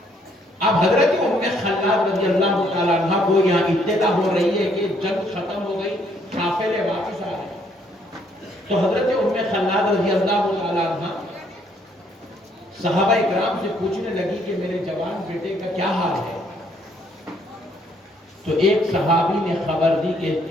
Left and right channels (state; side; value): normal; both; correlation 0.67